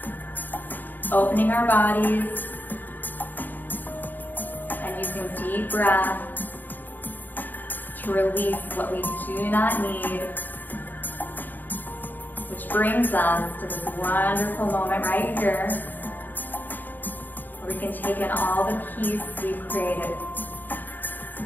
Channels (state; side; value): late; right; 0.087 ms